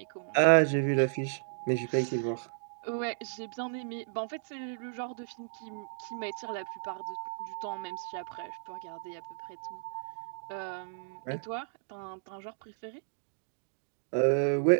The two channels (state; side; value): silent; left; digital silence